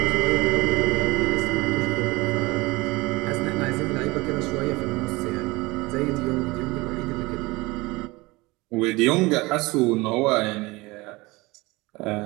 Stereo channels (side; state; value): left; quieter; 22.5 dB